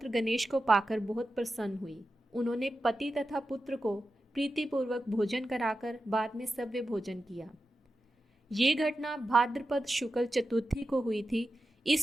गणेश को पाकर बहुत प्रसन्न हुई। उन्होंने पति तथा पुत्र को प्रीतिपूर्वक भोजन कराकर बाद में सव्य भोजन किया। ये घटना भाद्रपद शुक्ल चतुर्थी को हुई थी,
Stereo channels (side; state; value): both; normal; correlation 0.91